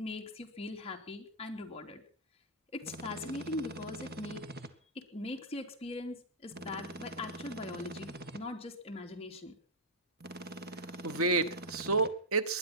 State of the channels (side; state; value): both; normal; correlation -0.10